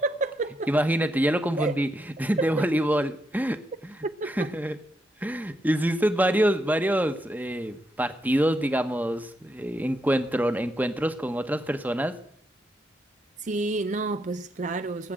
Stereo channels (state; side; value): normal; both; correlation 0.80